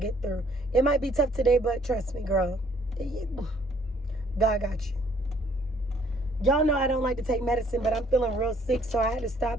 through. It might be tough today, but trust me, girl. God got you. Y'all know I don't like to take medicine, but I'm feeling real sick, so I had to stop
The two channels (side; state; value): both; normal; correlation 0.62